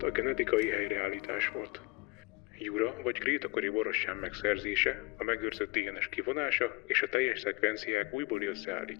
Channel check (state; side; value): quieter; right; 24.1 dB